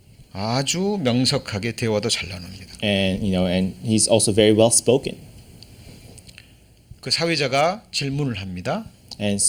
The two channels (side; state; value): both; identical; correlation 1.00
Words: 아주 명석하게 대화도 잘 나눕니다. And and he's also very well spoken. 그 사회자가 질문을 합니다. And